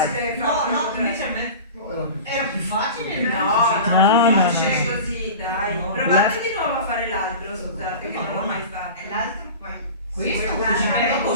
facile No, farlo no, così. invece a me era più facile. No, facile no. così, dai. No. Provate di nuovo a fare l'altro, scusate, che non l'ho mai fatto. E l'altro poi. Questo dopo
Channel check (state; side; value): inverted; both; correlation -0.34